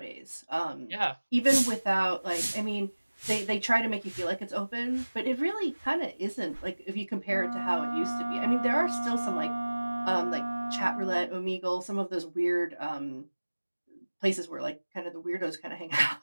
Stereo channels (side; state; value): both; inverted; correlation -1.00